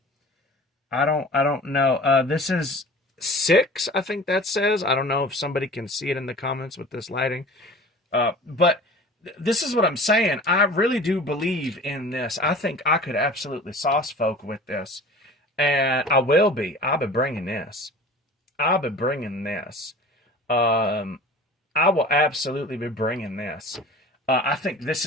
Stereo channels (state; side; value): normal; both; correlation 0.41